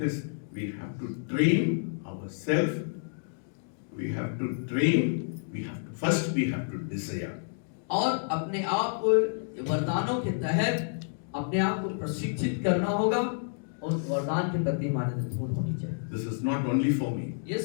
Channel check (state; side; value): silent; right; digital silence